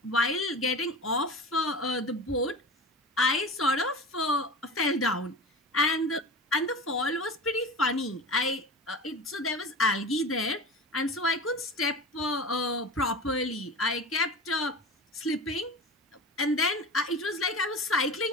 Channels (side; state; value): both; normal; correlation 0.31